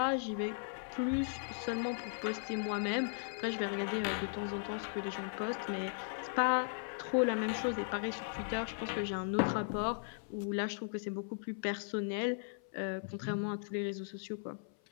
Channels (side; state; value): right; silent; 53 dB below the other